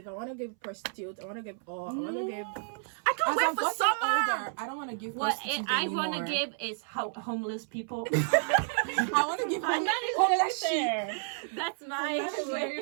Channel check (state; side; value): silent; left; 57 dB below the other